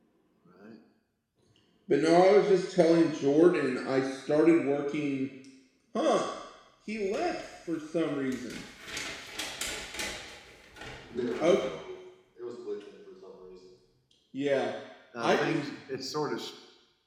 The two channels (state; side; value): identical; both; correlation 1.00